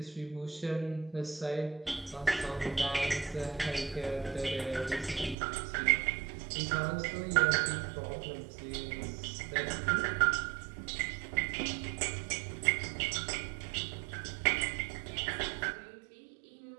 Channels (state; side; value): drops out; left; at 5.4 s